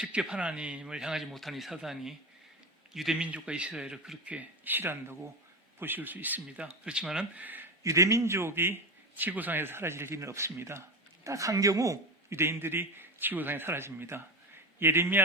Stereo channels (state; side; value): normal; both; correlation 0.21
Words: 하나님을 향하지 못한 이 사단이 유대민족과 이스라엘을 그렇게 싫어한다고 보실 수 있습니다. 그렇지만은 유대민족이 지구상에서 사라질 일은 없습니다. 딱 한 경우 유대인들이 지구상에 사라집니다.